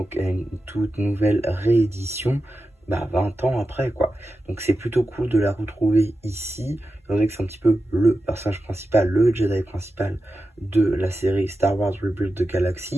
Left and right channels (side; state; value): both; normal; correlation 0.91